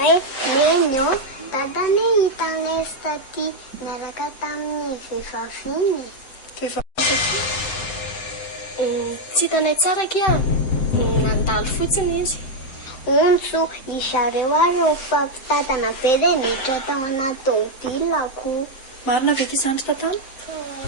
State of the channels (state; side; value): late; right; 7.8 ms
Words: nenyo, dadane hitanay taty miaraka tamin'ny vehivavy iny. Tsy hitanay tsara kia, nandalo fotsiny izy. Ontso, izareo ary mifampitadana be dia miditra tao anaty tômôbilako. Marina ve ity zandry tantana?